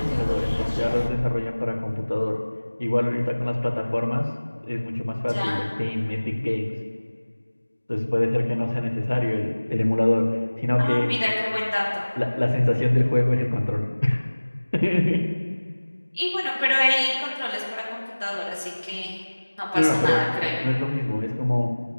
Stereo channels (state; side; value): inverted; both; correlation -1.00